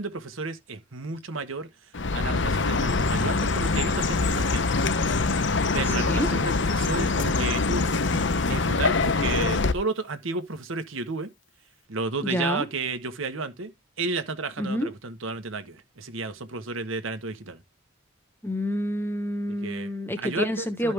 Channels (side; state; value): both; normal; correlation 0.30